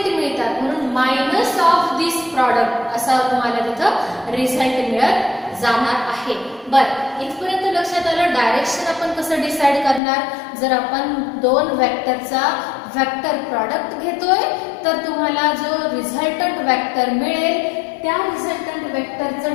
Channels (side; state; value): right; drops out; at 10.0 s